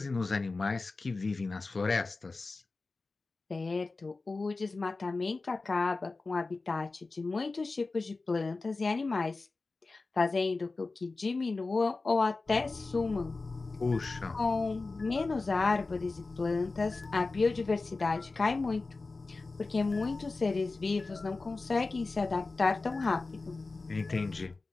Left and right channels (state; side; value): quieter; right; 3.7 dB